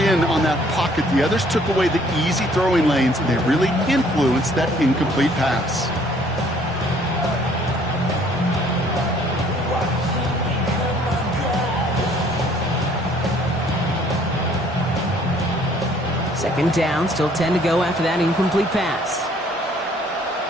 on that pocket, the others took away the easy throwing lanes, and they really influenced that incomplete pass. Second down, still 10 to go after that incomplete pass.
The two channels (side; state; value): both; normal; correlation 0.60